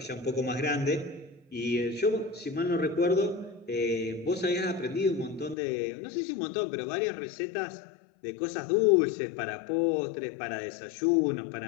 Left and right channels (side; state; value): right; drops out; at 5.6 s